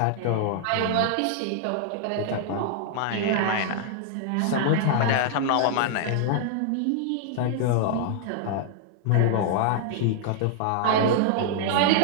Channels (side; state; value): both; different; correlation -0.01